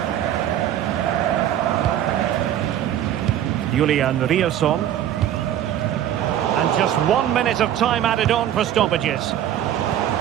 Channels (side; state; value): left; quieter; 11.1 dB